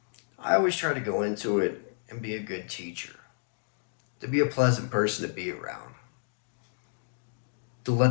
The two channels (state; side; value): silent; right; digital silence